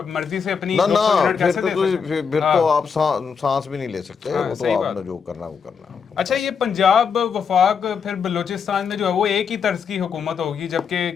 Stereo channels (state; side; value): quieter; right; 6.3 dB